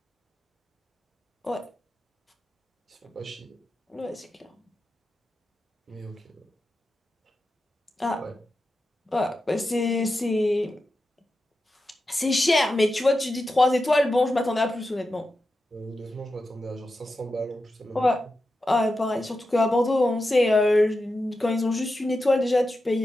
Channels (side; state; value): both; normal; correlation 0.90